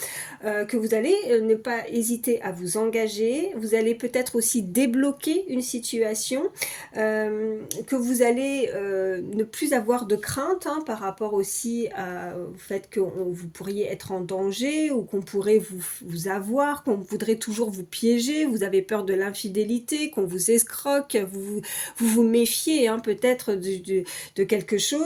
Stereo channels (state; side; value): identical; both; correlation 1.00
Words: que vous allez ne pas hésiter à vous engager, vous allez peut-être aussi débloquer une situation, que vous allez ne plus avoir de crainte hein, par rapport aussi au fait que vous pourriez être en danger ou qu'on pourrait vous avoir, qu'on voudrait toujours vous piéger, vous avez peur de l'infidélité, qu'on vous escroque, vous méfiez dissocier hein, peut-être de quelque